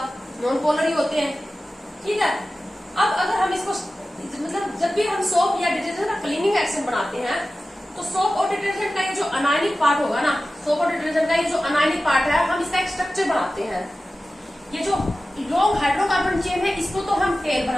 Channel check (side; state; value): both; normal; correlation 0.95